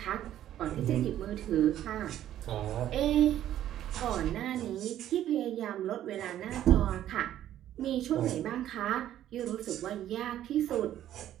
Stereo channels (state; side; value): quieter; left; 12.0 dB